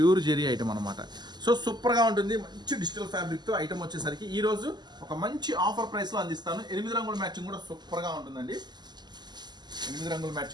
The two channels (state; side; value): late; left; 0.21 ms